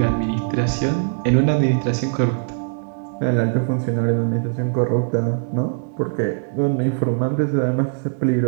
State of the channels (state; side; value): silent; left; digital silence